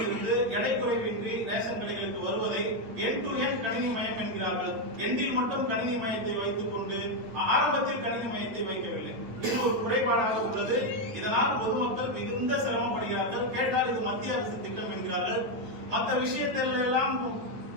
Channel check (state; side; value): late; left; 9.0 ms